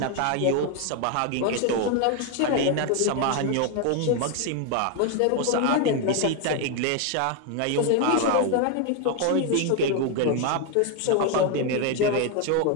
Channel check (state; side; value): different; both; correlation 0.01